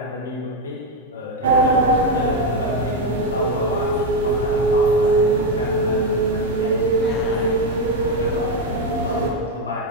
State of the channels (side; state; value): both; normal; correlation 0.05